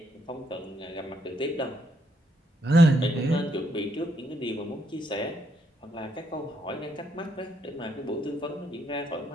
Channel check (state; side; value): normal; both; correlation 0.74